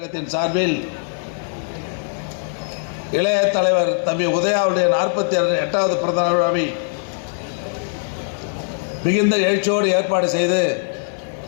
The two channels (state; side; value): silent; right; digital silence